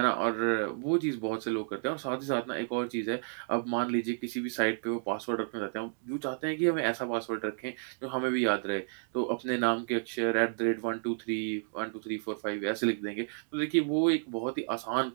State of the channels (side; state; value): left; silent; digital silence